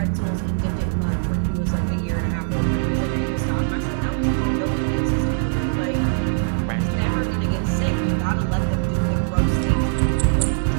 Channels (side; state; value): left; silent; digital silence